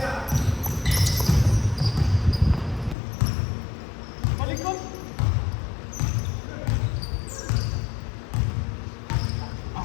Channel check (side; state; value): right; drops out; at 3.0 s